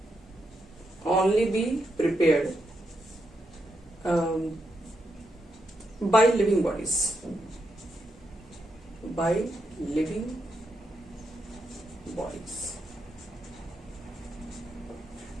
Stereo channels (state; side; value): normal; both; correlation 0.82